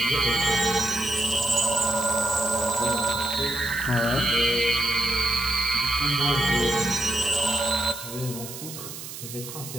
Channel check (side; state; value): right; noise; hiss, 11 dB below the sound